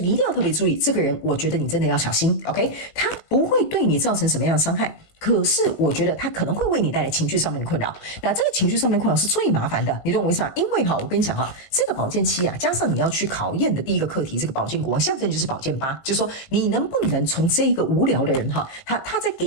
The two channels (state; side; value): late; right; 19 ms